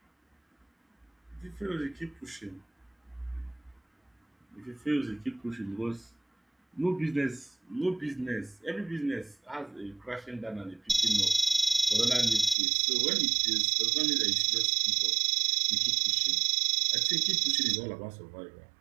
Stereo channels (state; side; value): drops out; left; at 12.6 s